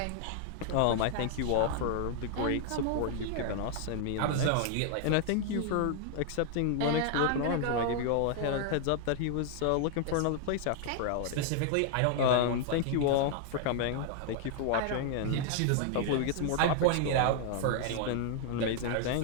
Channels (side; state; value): both; different; correlation 0.00